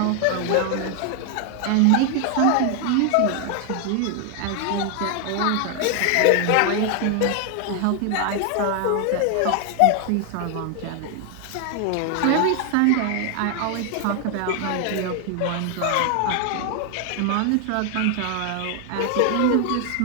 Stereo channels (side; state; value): both; different; correlation 0.00